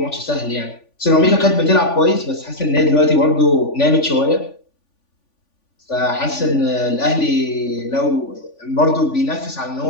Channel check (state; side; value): late; right; 3.5 ms